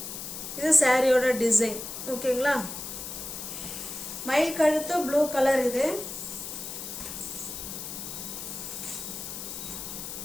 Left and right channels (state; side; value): noise; left; hiss, 8 dB below the sound